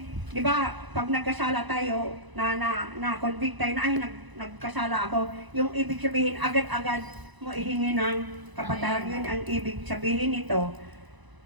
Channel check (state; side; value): late; left; 1.0 ms